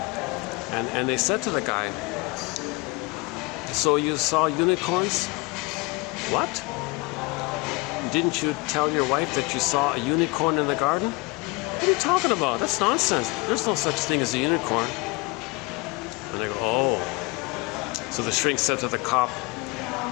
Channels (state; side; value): quieter; right; 25.6 dB